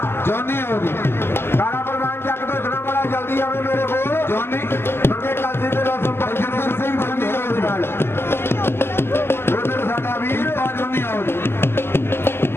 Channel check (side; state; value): right; late; 0.11 ms